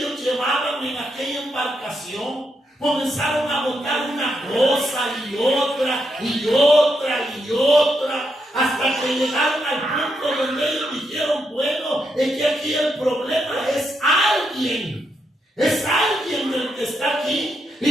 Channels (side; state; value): both; normal; correlation 0.81